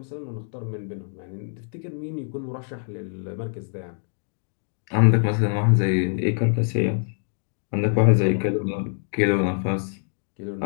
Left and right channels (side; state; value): right; silent; 62 dB below the other